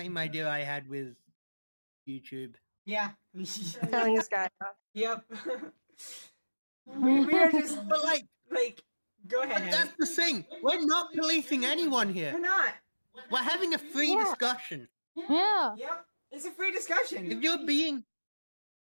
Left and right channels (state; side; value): inverted; both; correlation -1.00